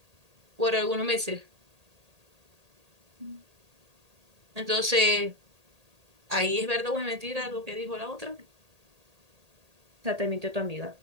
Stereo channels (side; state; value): left; late; 1.8 ms